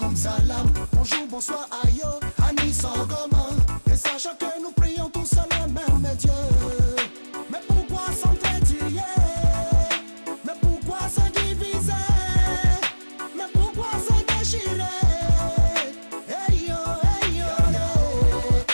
salam. Bonjour, bonsoir, ayo, Anis Sangoma. Et sachant que nous prions tous à le même Dieu. Mais pourquoi s'entretuer? Mais pourquoi se diviser? Mais pourquoi se déchirer? Hey yo,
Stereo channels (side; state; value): both; inverted; correlation -1.00